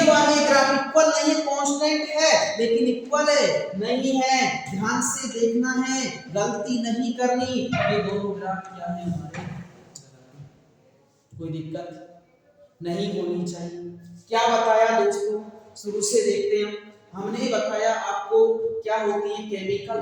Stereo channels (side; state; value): both; identical; correlation 1.00